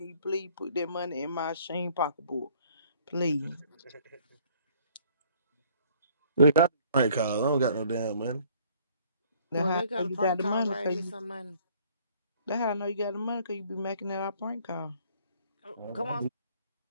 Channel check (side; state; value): both; inverted; correlation -0.59